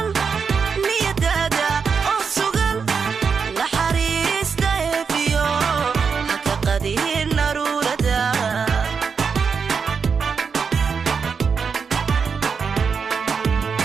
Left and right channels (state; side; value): quieter; left; 5.8 dB